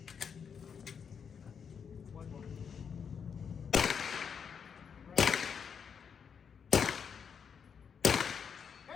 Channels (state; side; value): quieter; right; 6.8 dB